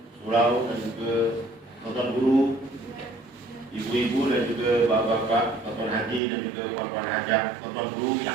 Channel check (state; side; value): drops out; left; at 6.2 s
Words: Surau dan juga tuan guru, ibu-ibu dan juga bapak-bapak, tuan haji dan juga puan-puan hajah, tuan guru yang